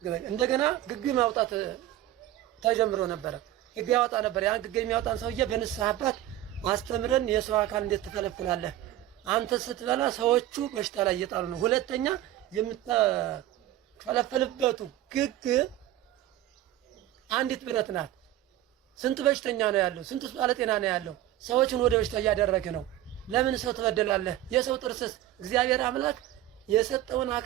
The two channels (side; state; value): left; quieter; 13.9 dB